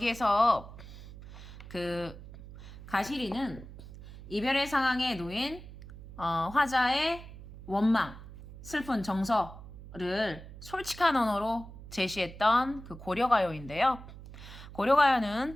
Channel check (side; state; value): right; noise; hum, 15 dB below the sound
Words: 그 가시리는 이별의 상황에 놓인 화자의 원망, 슬픈 정서를 솔직한 언어로 제시했던 그 고려가요인데요.